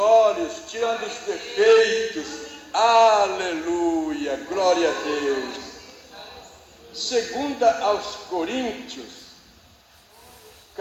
tirando os defeitos. Aleluia, glória a Deus. Segunda aos Coríntios,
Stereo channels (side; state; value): both; identical; correlation 1.00